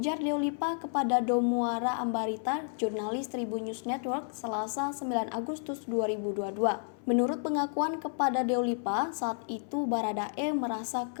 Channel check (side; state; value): right; silent; 57 dB below the other